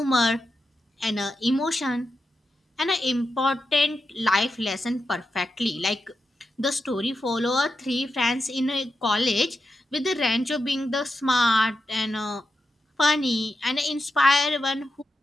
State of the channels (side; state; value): both; normal; correlation 0.88